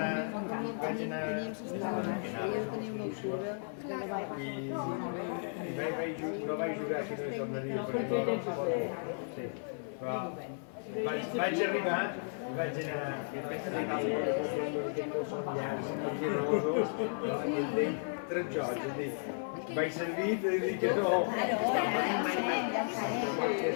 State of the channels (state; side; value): silent; right; 55 dB below the other